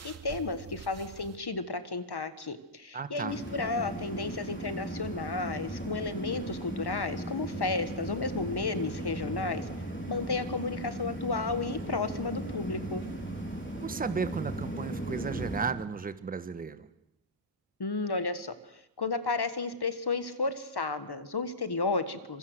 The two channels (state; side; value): normal; both; correlation -0.08